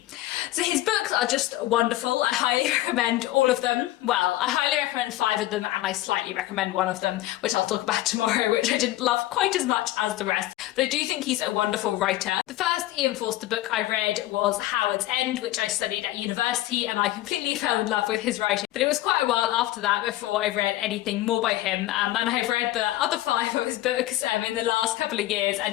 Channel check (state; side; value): quieter; right; 15.6 dB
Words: So his books are just wonderful. I highly recommend all of them. Well, I highly recommend 5 of them, and I slightly recommend one of them, which I'll talk about tomorrow, which I didn't love quite as much as the rest. but I do think he's a wonderful writer. The first Ian Forster book I read was Howard's End, which I studied at university, and I completely fell in love with his writing. But it was quite a while after that before I read anything more by him, and I've read the other 5 of his books in the last couple of years